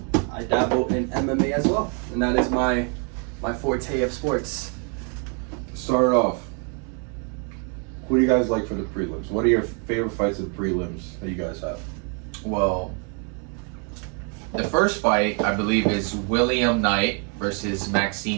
I dabble in MMA as well, and that is my forte of sports. Start off. Who do you guys like for the prelims? What are your favorite fights of the prelims that you guys have? Well, the first fight, I believe, is William Knight versus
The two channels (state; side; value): quieter; left; 38.1 dB